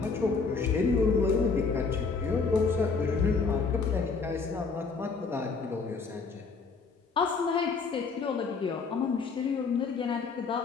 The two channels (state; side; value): quieter; right; 4.7 dB